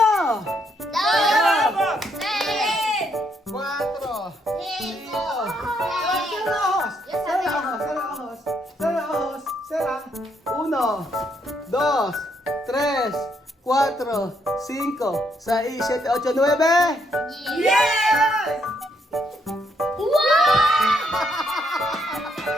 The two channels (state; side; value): normal; both; correlation 0.74